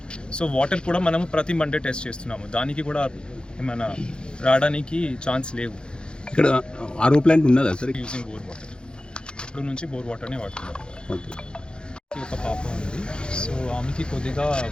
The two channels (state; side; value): late; right; 0.050 ms